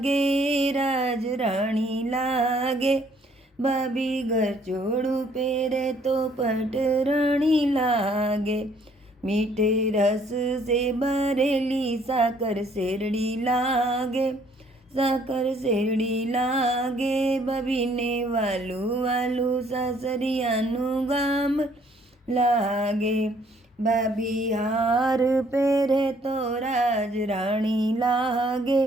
राज राणी लागे। भाभी घर चोड़ू पेरे तो पटराणी लागे। मीठे रस से भरेली साकर शेरड़ी लागे, साकर शेरड़ी लागे। भाभी ने वालू वालू सासरियानु गाम लागे। भाभी हार पेरे तो राज राणी लागे,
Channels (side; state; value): both; normal; correlation 0.63